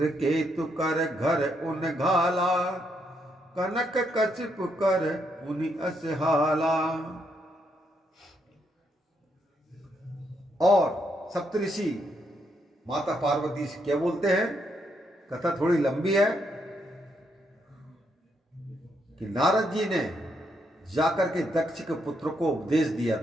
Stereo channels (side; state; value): both; normal; correlation 0.77